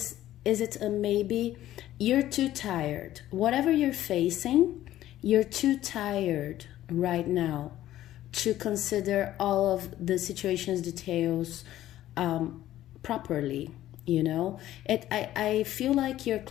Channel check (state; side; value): quieter; right; 13.6 dB